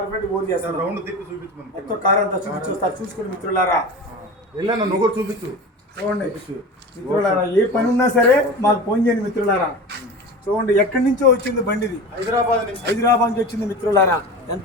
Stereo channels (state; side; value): normal; both; correlation 0.31